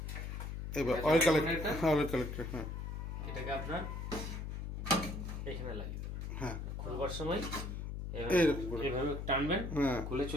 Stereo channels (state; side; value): noise; left; hum, 5 dB below the sound